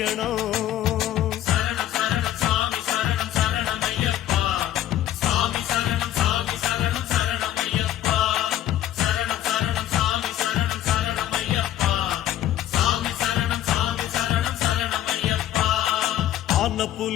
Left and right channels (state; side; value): quieter; right; 12.5 dB